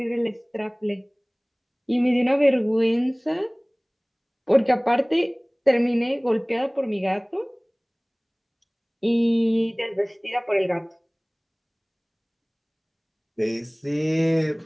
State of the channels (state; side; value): identical; both; correlation 1.00